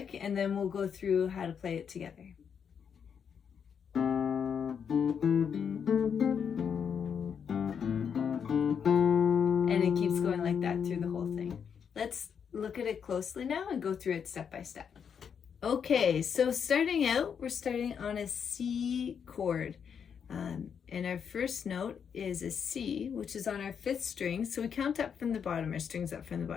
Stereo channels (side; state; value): right; quieter; 7.2 dB